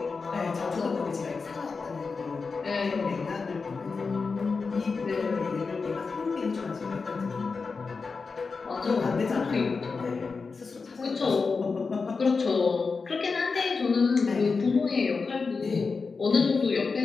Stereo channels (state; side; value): quieter; right; 4.6 dB